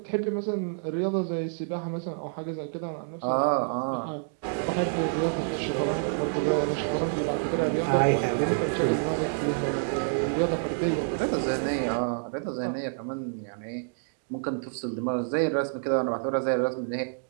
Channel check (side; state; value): left; silent; digital silence